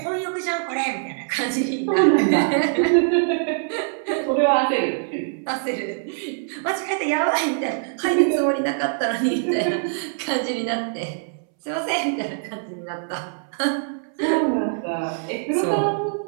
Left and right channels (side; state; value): left; silent; 63 dB below the other